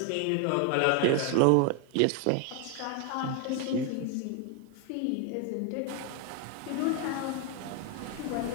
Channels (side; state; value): both; different; correlation 0.01